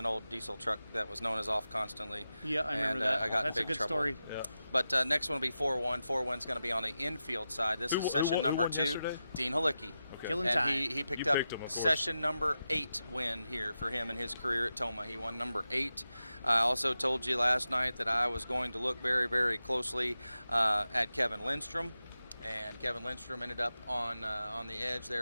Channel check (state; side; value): inverted; both; correlation -0.91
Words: old diesel truck that was known as off constantly. Yeah, I remember that. I got That's in big a good trouble. story. Yeah. But next one will be 4-1. 4-1's going to be on the infield side. This is session number 2. Yesterday? Dean Halicki. Killing and time. he picked up session number 8 win here for him in his career at Tomah. He won number 8. I also told you last night that I was going to look very, very closely at Kevin Lindstrom. And Kevin Lindstrom ended up on the edge